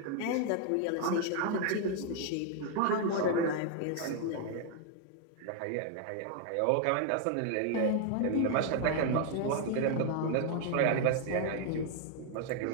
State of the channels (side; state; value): both; different; correlation 0.00